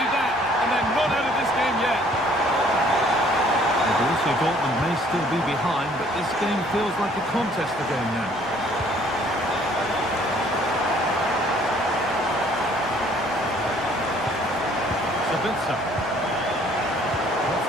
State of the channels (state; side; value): normal; both; correlation 0.59